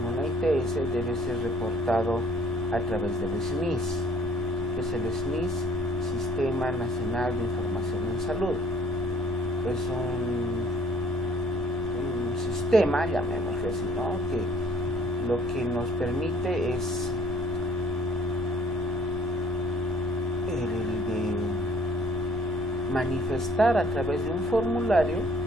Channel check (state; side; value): normal; both; correlation 0.58